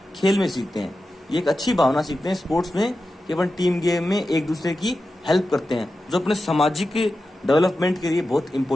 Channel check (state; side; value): normal; both; correlation 0.92